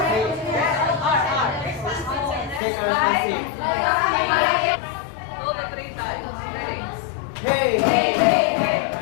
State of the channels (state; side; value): drops out; right; at 2.6 s